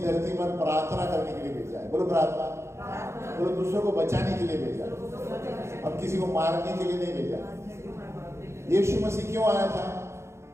धरती पर प्रार्थना करने के लिए भेजा है। बोलो प्रार्थना। बोलो दूसरों को बचाने के लिए भेजा। हम किसी को मारने के लिए नहीं भेजा। यीशु मसीह क्यों आया था?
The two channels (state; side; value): late; left; 0.13 ms